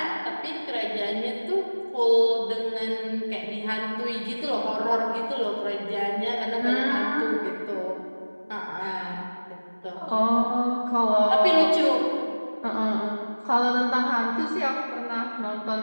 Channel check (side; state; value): both; inverted; correlation -1.00